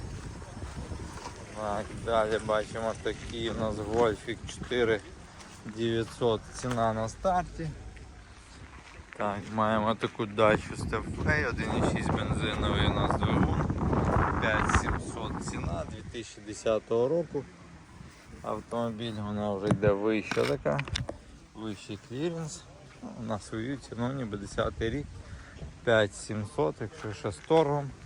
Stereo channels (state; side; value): identical; both; correlation 1.00